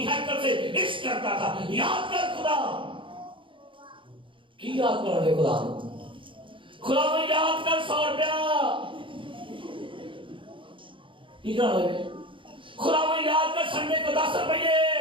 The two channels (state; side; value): late; left; 0.25 ms